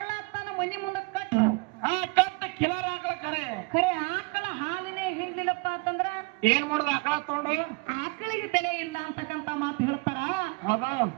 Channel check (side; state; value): left; quieter; 29.7 dB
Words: ತನ್ನ ಮನಿ ಮುಂದೆ ಕಟ್ಟು ಕಟ್ಟ ಕಿಲರ್ ಆಕಳ ಖರೆ ಆಕಳ ಹಾಲಿನೇ ಹಿಡ್ಲಿಲ್ಲಪ್ಪ ಅಂತಂದ್ರ ಏನ್ ಮಾಡುದ ಆಕಳ ತಗೊಂಡು ಆಕಳಿಗೆ ಬೆಲೆ ಇಲ್ಲ ಅಂತಕ್ಕಂಥ ಮಾತು ಹೇಳ್ತಾರ. ಹೌದು